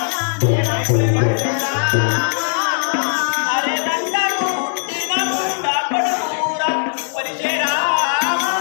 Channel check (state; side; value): silent; right; digital silence